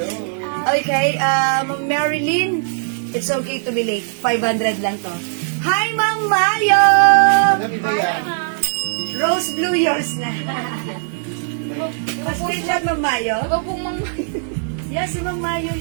okay, Ma'am Marilyn, it's okay to be late. 500 lang to. Hi, Ma'am Mayo! Madam, ito yan. Rose blue, yours na. Mas-screenshot, Ma'am Mayo? Iba pong mga... Yes, si Ma'am Mayo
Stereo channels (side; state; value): left; silent; 65 dB below the other